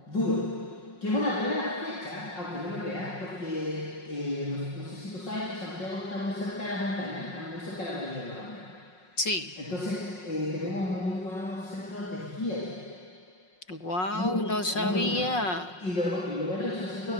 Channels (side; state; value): right; late; 5.5 ms